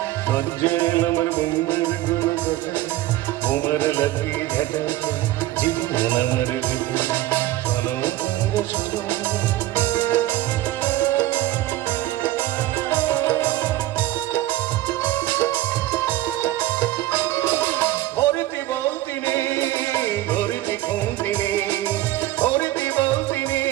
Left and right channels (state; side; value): quieter; left; 15.5 dB